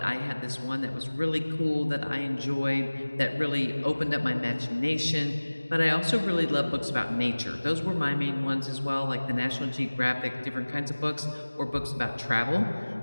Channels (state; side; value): inverted; both; correlation -1.00